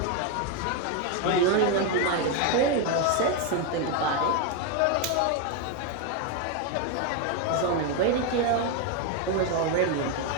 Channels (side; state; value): both; different; correlation 0.02